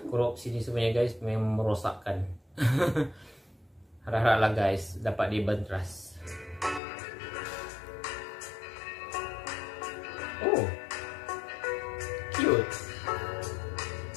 korupsi ni sebenarnya guys, memang merosakkan. Harap-haraplah guys dapat dibenteras. Oh, cute.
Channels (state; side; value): drops out; right; at 6.8 s